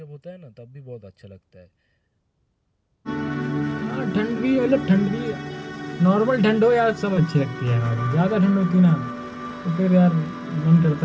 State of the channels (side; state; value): both; identical; correlation 1.00